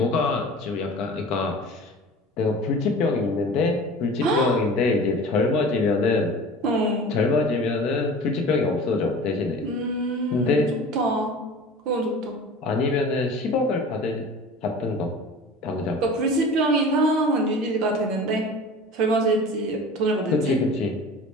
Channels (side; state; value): both; normal; correlation 0.39